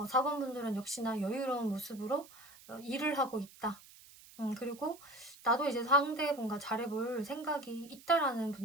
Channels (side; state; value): right; noise; hiss, 21 dB below the sound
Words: 역시나 여유로운 모습으로 일을 하고 있다. 그리고 나도 이제 상대분과 잘해볼 생각이 있다라는